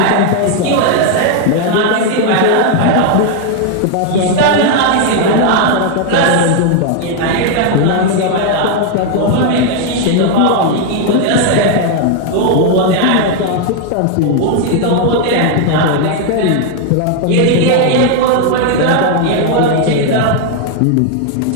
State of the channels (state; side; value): different; both; correlation 0.00